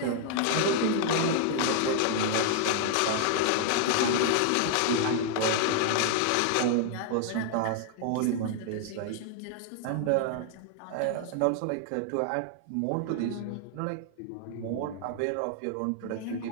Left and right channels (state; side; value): different; both; correlation 0.00